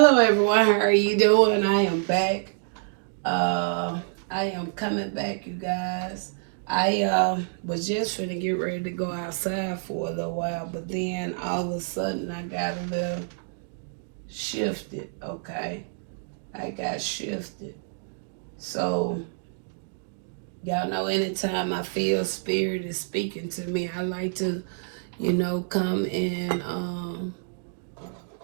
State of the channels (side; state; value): left; silent; digital silence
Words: Hello everyone, how are you doing? I am back. I am coming back, you guys. I was just finna get ready to go outside for a little while, but then all of a sudden I got a little shifted, okay? I got shifted. So y'all know anytime I feel spirit is speaking to me, I like to, come and